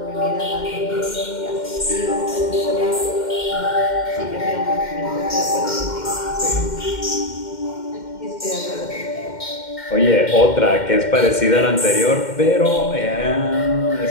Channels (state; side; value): late; right; 2.1 ms